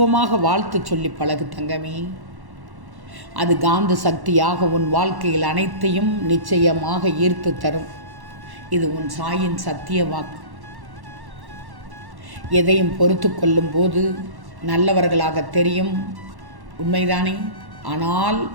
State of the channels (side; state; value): left; late; 1.1 ms